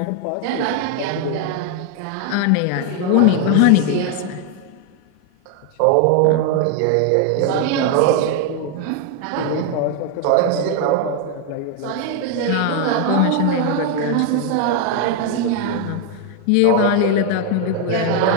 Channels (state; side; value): different; both; correlation 0.01